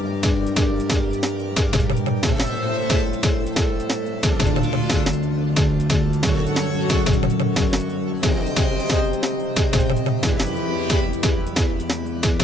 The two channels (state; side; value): normal; both; correlation 0.74